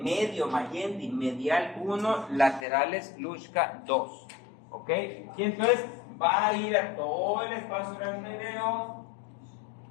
medio, Mayendi, medial 1, laterales Luschka 2. ¿Ok? Y entonces va a ir a todo el espacio aracnoideo.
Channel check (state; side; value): drops out; right; at 2.7 s